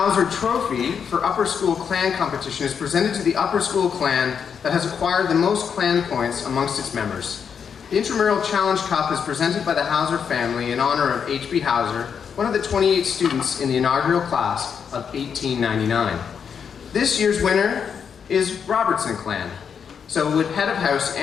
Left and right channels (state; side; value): quieter; right; 7.0 dB